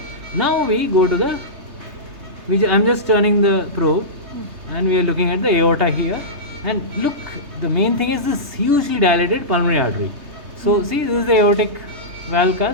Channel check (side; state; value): left; late; 3.3 ms